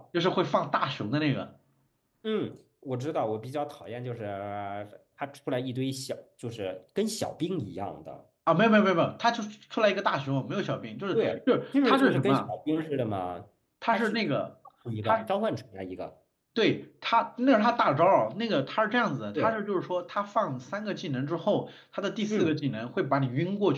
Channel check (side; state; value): both; identical; correlation 1.00